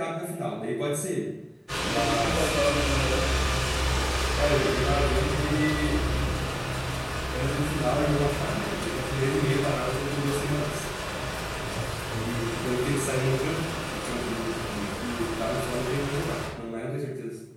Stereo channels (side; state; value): both; identical; correlation 1.00